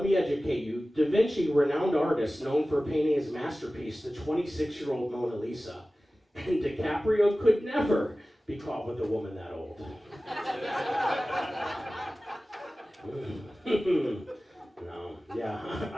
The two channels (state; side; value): normal; both; correlation 0.96